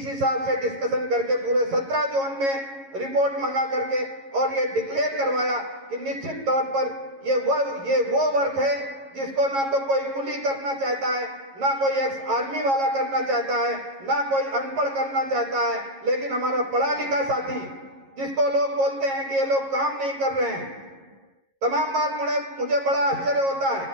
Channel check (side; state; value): left; late; 11 ms